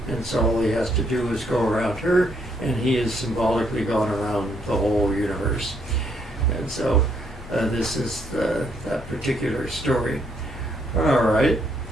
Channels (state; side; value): normal; both; correlation 0.72